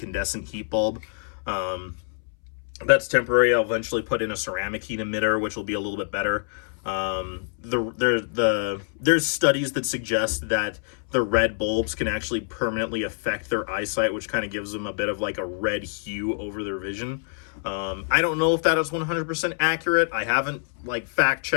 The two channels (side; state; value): right; silent; 61 dB below the other